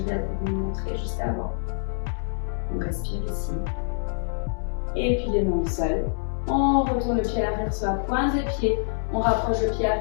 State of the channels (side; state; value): right; silent; 60 dB below the other